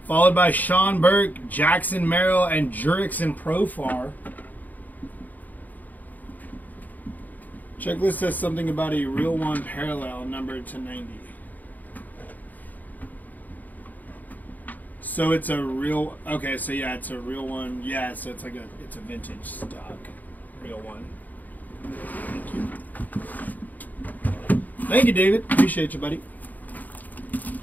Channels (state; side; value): late; right; 0.082 ms